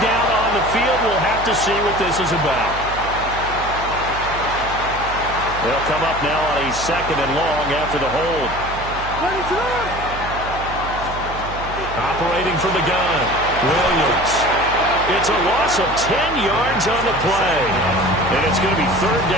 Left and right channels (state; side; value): noise; right; hum, 10 dB below the sound